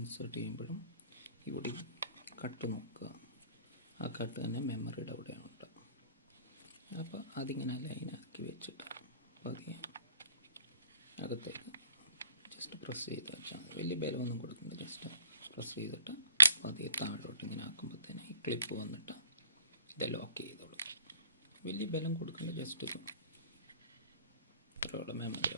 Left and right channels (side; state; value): both; inverted; correlation -0.51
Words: ചെയ്യുമ്പോഴും ഇവിടെ കട്ട് നോക്കുക. ആ കട്ട് തന്നെ മെമ്മറിയുടെ അവിടെയുണ്ട്. അപ്പോൾ അതിങ്ങനെ ലൈനാക്കി വെച്ചിട്ട് പതിയെ അകത്തേക്ക് ജസ്റ്റ് പ്രസ് ചെയ്ത് വെച്ചാൽ മതി. വലിയ ബലമൊന്നും കൊടുക്കുന്നത്, ജസ്റ്റ് പ്രസ് ചെയ്തിട്ട് പതിയെ താഴോട്ട് ഇങ്ങനെ ആക്കുമ്പോഴത്തേന് ഈ ക്ലിപ്പ് വന്നിട്ട് ഇത് ലോക്ക് ചെയ്തോളൂ. വലിയ ബലം കൊടുക്കേണ്ട, ജസ്റ്റ് ഇത്രയോടെ മെമ്മറി